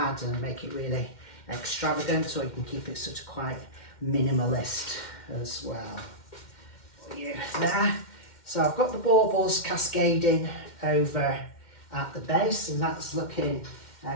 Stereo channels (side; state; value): right; late; 2.1 ms